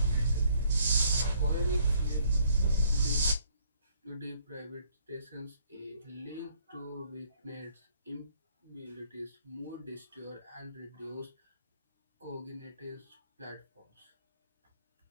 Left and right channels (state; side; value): inverted; both; correlation -0.63